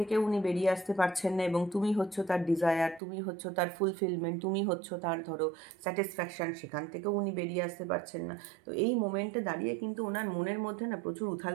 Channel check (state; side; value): drops out; left; at 3.0 s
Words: উনি বেরিয়ে আসতে পারছেন না। এবং তুমি হচ্ছ তার ডিজায়ার, তুমি হচ্ছ তার ফুলফিলমেন্ট, তুমি হচ্ছ তার ধরো স্যাটিসফ্যাকশান, সেখান থেকেও উনি বেরিয়ে আসতে পারছেন না। তো এই মোমেন্টে দাঁড়িয়ে কিন্তু ওনার মনের মধ্যে না প্রচুর উথাল